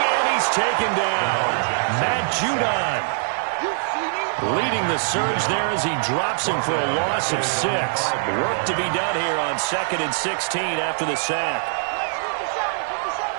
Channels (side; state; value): left; silent; digital silence